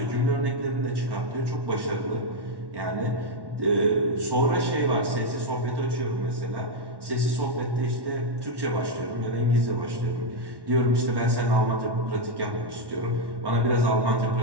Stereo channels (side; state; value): left; late; 1.1 ms